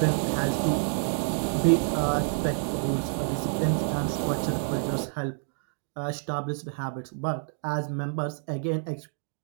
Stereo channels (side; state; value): left; silent; 59 dB below the other